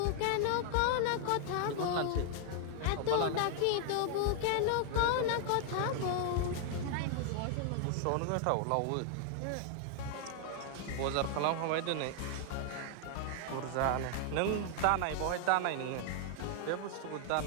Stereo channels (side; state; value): both; different; correlation 0.00